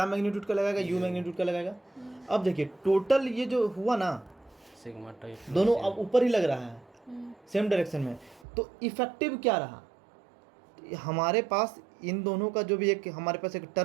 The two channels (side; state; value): left; drops out; at 8.5 s